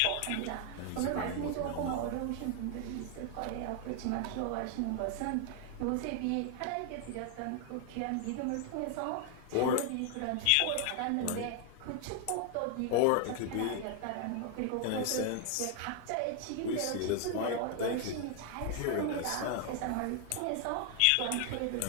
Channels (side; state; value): both; different; correlation 0.00